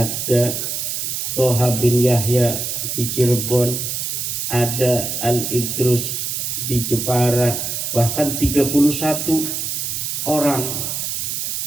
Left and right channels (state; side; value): noise; right; hiss, 3 dB below the sound